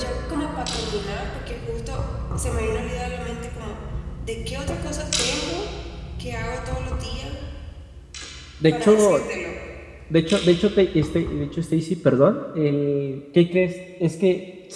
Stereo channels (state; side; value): identical; both; correlation 1.00